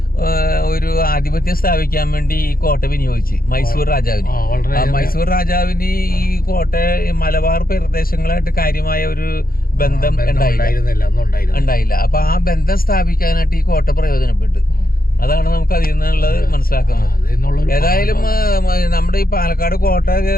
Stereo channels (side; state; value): right; late; 0.42 ms